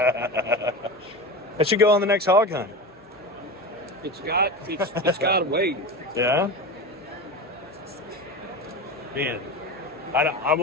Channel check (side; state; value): both; normal; correlation 0.25